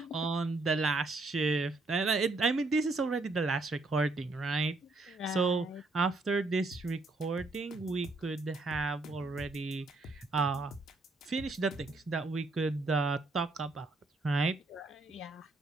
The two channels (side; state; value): left; quieter; 3.2 dB